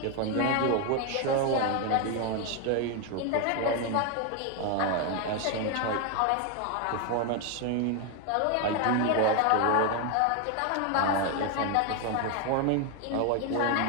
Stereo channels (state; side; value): different; both; correlation 0.01